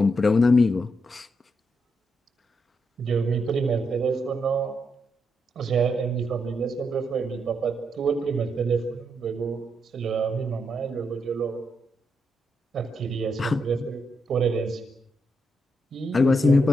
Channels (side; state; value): both; normal; correlation 0.81